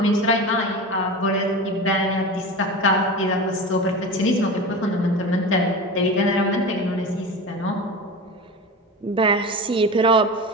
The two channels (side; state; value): both; normal; correlation 0.28